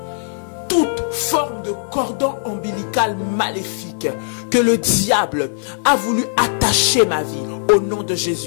toute forme de cordon ombilical maléfique que le diable a voulu attacher ma vie. Au nom de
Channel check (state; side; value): silent; right; 58 dB below the other